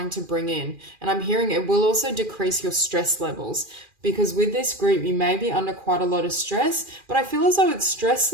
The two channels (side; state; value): left; late; 2.4 ms